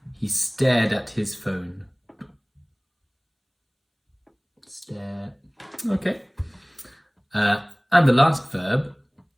he stared at his phone. Stare. Okay. And the last verb,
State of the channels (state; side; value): identical; both; correlation 1.00